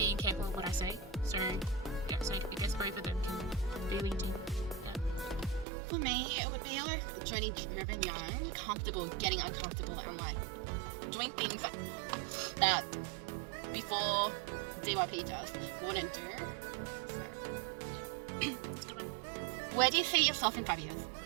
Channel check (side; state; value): left; drops out; at 5.7 s